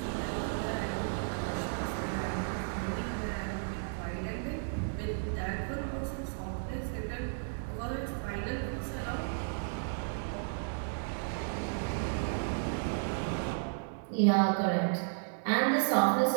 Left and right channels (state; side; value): silent; left; digital silence